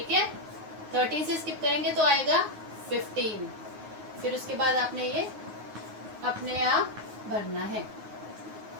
है। 13 से स्किप करेंगे तो आएगा 15। फिर उसके बाद आपने ये अपने आप भरना है।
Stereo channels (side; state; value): left; late; 9.4 ms